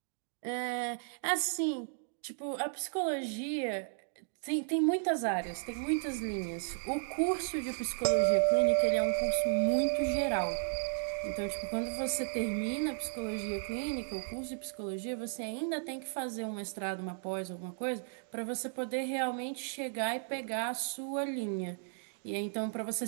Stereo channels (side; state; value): left; silent; digital silence